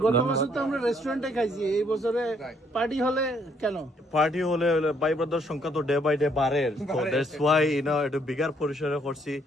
গত বছর তো আমরা রেস্টুরেন্টে খাইছি, এই বছরে পার্টি হলে কেন? পার্টি হলে ভাই ব্রাদার সংখ্যা তো ডে বাই ডে বাড়ে, সো দ্যাটস ওয়াই একটু বিগার পরিসরে করছি।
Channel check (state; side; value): normal; both; correlation 0.69